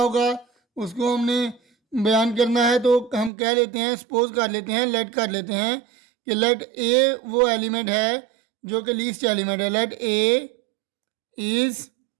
उसको हमने बयान करना है, तो हम कह लेते हैं, सपोज कर लेते हैं, लेट कर लेते हैं कि लेट ए वो एलिमेंट है जो कि लीस्ट एलिमेंट है। Let A is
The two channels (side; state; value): left; drops out; at 3.3 s